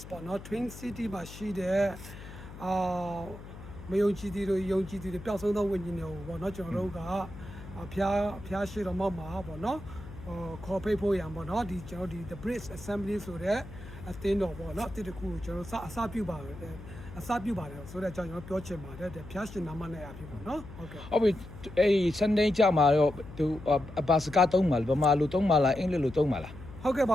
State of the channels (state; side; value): noise; left; hum, 14 dB below the sound